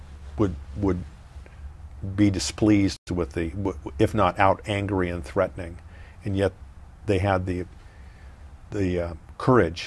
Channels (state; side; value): identical; both; correlation 1.00